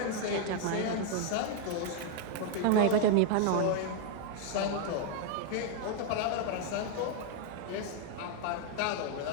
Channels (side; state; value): both; different; correlation 0.00